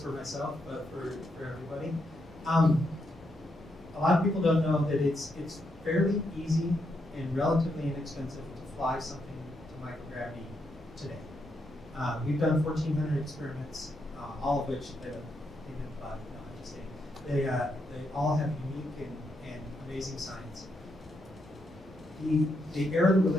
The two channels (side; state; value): both; normal; correlation 0.80